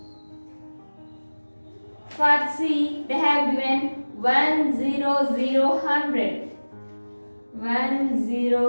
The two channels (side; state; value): both; inverted; correlation -1.00